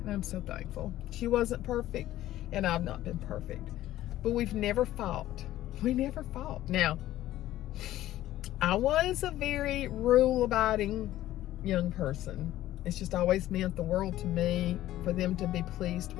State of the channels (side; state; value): right; quieter; 14.2 dB